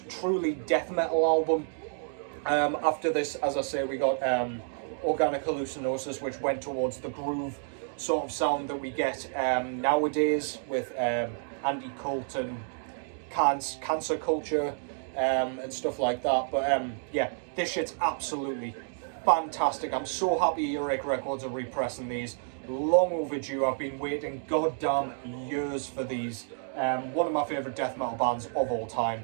truly death metal album. After this, as I say, we got Organic Hallucinosis, which went towards the groove sort of sound that we get nowadays with anti-cult and cancer culture and stuff like that. But yeah, this shit's absolutely fantastic. I'm so happy Earache Records are repressing these. Long overdue. I've been waiting goddamn years for these. One of my favourite death metal bands of all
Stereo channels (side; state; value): left; silent; digital silence